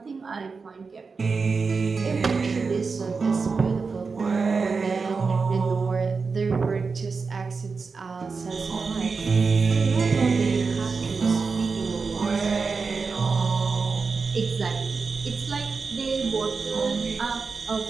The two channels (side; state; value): left; quieter; 4.7 dB